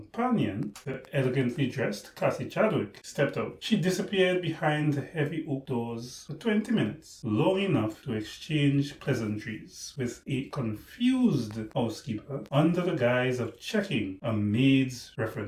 the elegantly dressed Cassie Chadwick, stepped out. She disappeared behind the heavy oak doors for 20 minutes, long enough to exchange pleasantries with a confused housekeeper under the guise of checking a maid's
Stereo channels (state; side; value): identical; both; correlation 1.00